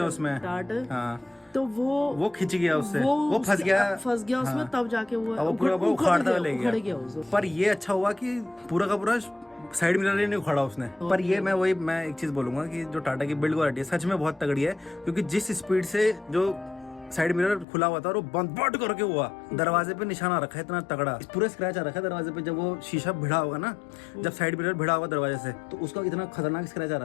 हैं उसमें टाट। तो वो खिंच गया उससे, वो फंस गया उसमें, तब जाके वो पूरा उखाड़ता ले गया। पर ये अच्छा हुआ कि पूरा का पूरा साइड मिरर ही नहीं उखाड़ा उसने। पर ये मैं एक चीज बोलूंगा कि जो टाटा की बिल्ड क्वालिटी है सच में बहुत तगड़ी है, क्योंकि जिस स्पीड से जो साइड मिरर खुला हुआ था और वो बंद करके हुआ, दरवाजे पे निशाना रखा है इतना तगड़ा, पूरा स्क्रैच आ रखा है दरवाजे पे। जब वो शीशा भिड़ा होगा ना, जब साइड मिरर भिड़ा होगा दरवाजे से, तो उसका इतना खतरनाक स्क्रैच आ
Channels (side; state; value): right; drops out; at 17.7 s